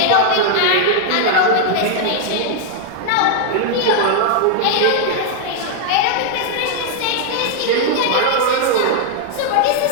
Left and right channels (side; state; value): both; different; correlation 0.00